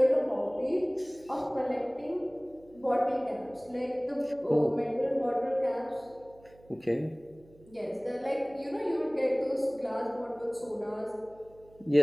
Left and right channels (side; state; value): right; noise; hum, 26 dB below the sound